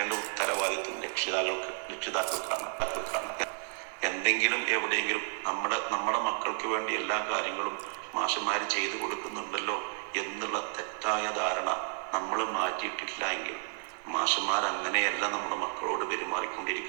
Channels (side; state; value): left; silent; 57 dB below the other